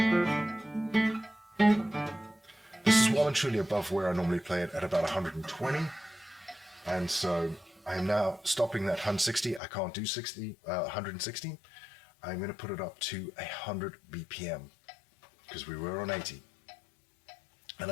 This is well and truly above where I normally play it at about 120. And so I'm now stopping that 160. I can't do 160. I'm going to put it up to 100 BPM because we were on 80. And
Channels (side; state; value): right; drops out; at 9.6 s